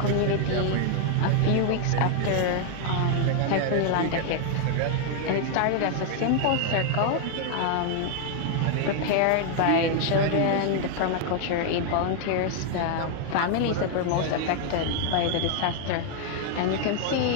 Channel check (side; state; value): both; different; correlation 0.00